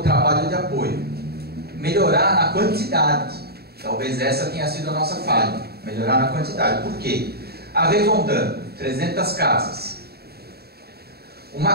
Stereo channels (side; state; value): left; late; 0.46 ms